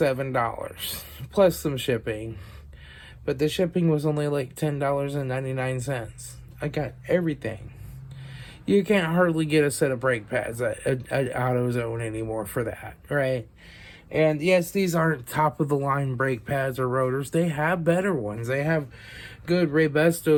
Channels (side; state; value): both; identical; correlation 1.00